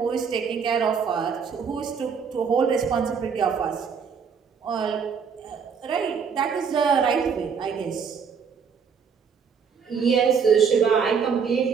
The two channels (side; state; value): left; quieter; 6.3 dB